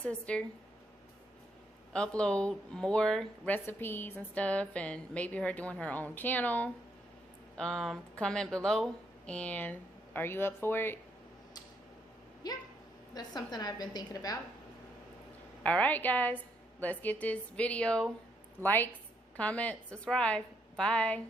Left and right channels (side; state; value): both; normal; correlation 0.75